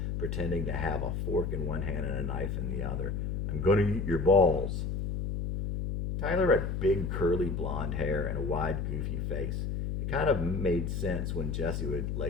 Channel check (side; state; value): left; noise; hum, 2 dB below the sound